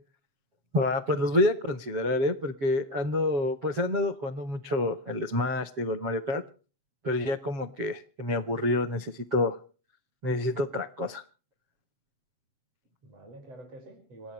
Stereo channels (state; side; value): late; left; 7.3 ms